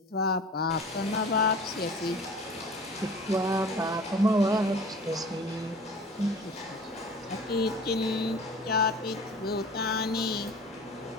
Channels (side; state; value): both; normal; correlation 0.42